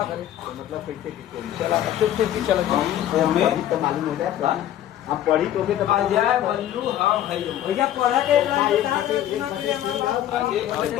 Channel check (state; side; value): quieter; right; 12.0 dB